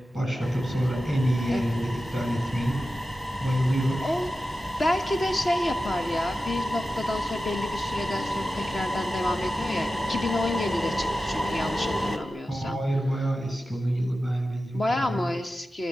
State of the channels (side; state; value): both; normal; correlation 0.93